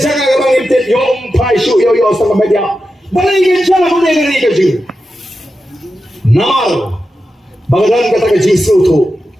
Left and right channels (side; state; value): both; normal; correlation 0.90